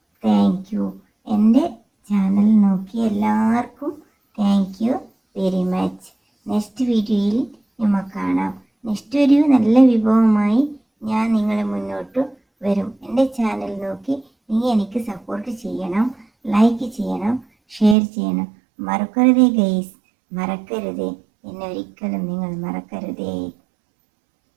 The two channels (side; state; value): left; drops out; at 17.9 s